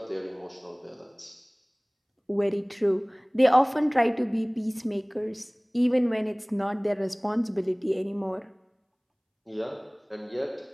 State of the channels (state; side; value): identical; both; correlation 1.00